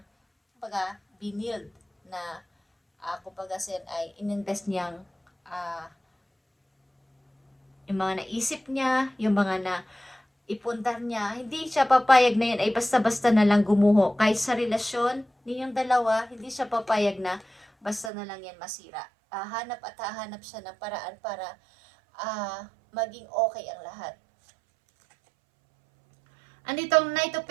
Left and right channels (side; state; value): left; drops out; at 18.1 s